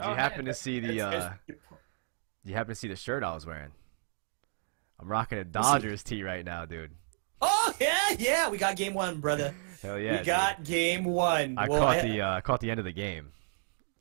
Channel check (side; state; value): left; silent; 57 dB below the other